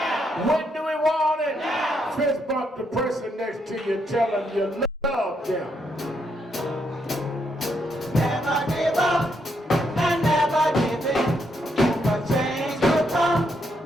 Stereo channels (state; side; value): normal; both; correlation 0.77